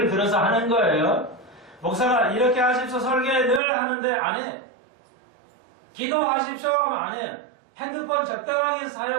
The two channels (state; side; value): drops out; left; at 3.6 s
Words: 들어서 하는 거예요. 목사가 이렇게 하십시오 설계 늘 하는데 안 해. 기도하십시오 하면 안 해요. 핸드폰 적당하게